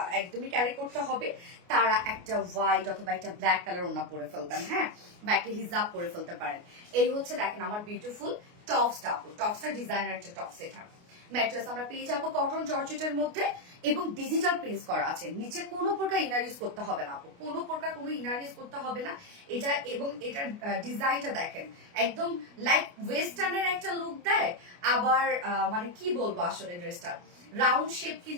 একদমই ক্যারি করতে হবে তারা একটা হোয়াইট অথবা একটা ব্ল্যাক কালার ওড়না পরে ফেলবেন, হ্যাঁ বা একটা হিজাব পরে ফেলতে পারেন। এই হচ্ছে দেখেন আমার বিউটিফুল টপসটা আপু, টপসটা ডিজাইনার একটা টপস। এটা ম্যাট্রেস আমরা পেয়ে যাবো কটন জর্জেটের মধ্যে এবং ডিজিটাল প্রিন্ট করা আছে, নিচে কোনো প্রকার ইনার ইউজ করতে হবে না আপু, কোনো প্রকার কোনো ইনার ইউজ করতে হবে না এটা। এবং এটার ডিজাইনটা দেখেন একদম লাইক ওয়েস্টার্নের একটা লুক দেয়, আবার মানে কি বলবো আসলে ড্রেসটা রাউন্ড শেপ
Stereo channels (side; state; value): left; late; 29 ms